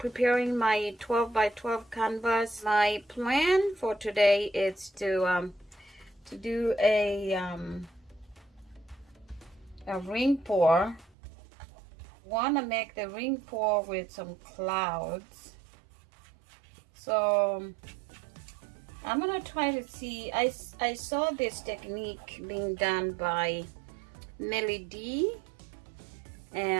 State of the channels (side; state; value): left; drops out; at 11.1 s